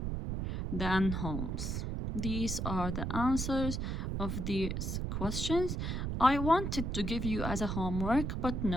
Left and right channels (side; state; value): right; noise; rumble, 2 dB below the sound